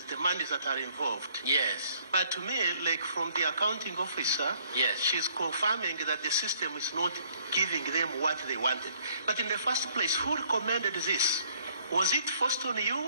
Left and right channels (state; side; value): inverted; both; correlation -0.62